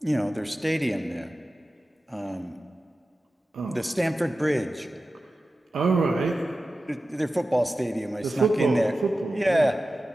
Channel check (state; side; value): normal; both; correlation 0.94